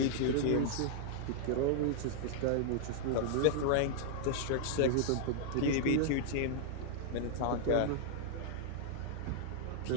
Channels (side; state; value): both; different; correlation -0.01